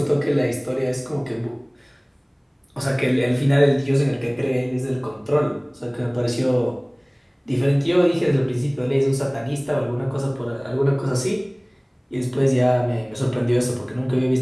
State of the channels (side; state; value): both; identical; correlation 1.00